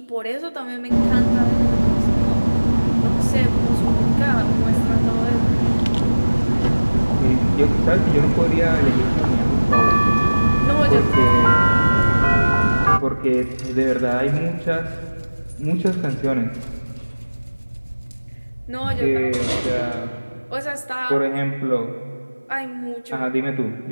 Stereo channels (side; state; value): both; inverted; correlation -1.00